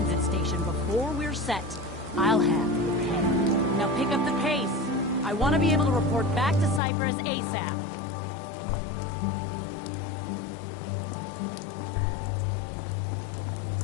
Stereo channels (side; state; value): right; drops out; at 6.8 s